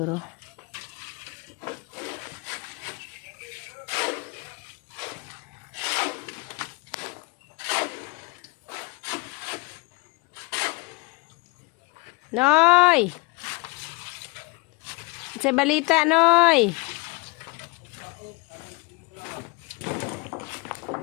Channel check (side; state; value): right; quieter; 26.8 dB